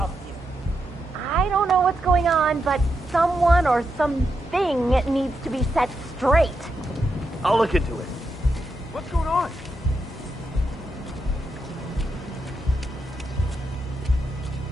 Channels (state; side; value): normal; both; correlation 0.84